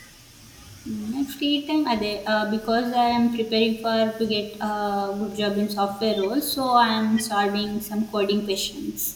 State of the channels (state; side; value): identical; both; correlation 1.00